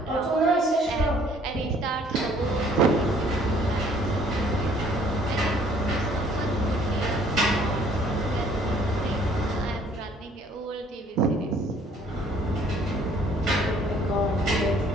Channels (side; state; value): both; normal; correlation 0.58